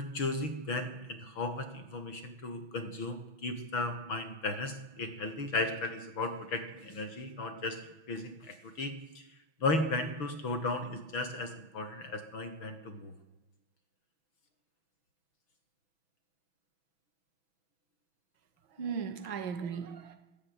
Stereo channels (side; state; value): right; late; 6.1 ms